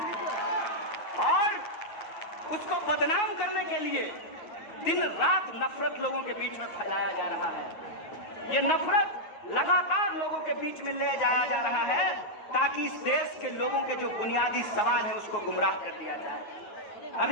और उसको बदनाम करने के लिए दिन रात नफरत लोगों के बीच में फैलाया जा रहा है। ये नफरत लगातार लोगों के बीच में ले जाया जा रहा है ताकि इस देश के लोगों के जो बुनियादी सवाल है उसको गुमराह कर दिया जाए।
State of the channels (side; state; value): right; late; 9.5 ms